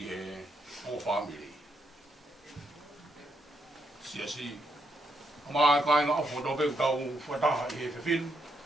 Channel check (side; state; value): both; normal; correlation 0.79